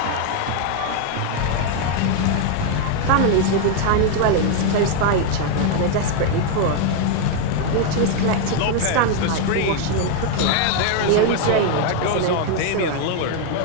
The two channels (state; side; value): different; both; correlation 0.01